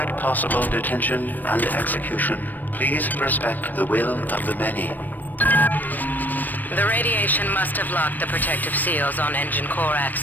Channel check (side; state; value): right; late; 0.088 ms